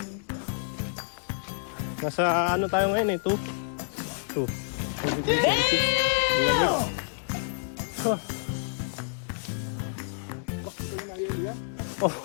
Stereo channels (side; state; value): right; silent; digital silence